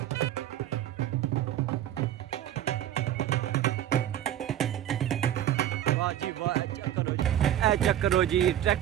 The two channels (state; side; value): quieter; left; 11.9 dB